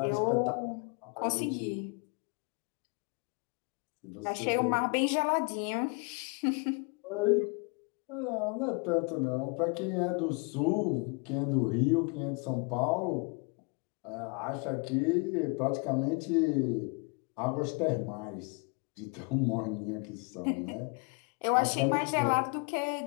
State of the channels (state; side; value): quieter; right; 32.6 dB